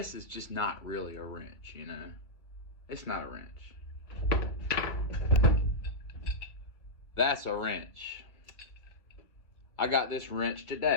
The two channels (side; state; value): right; late; 1.6 ms